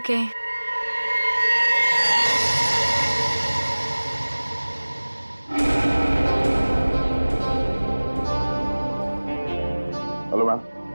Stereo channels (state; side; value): inverted; both; correlation -1.00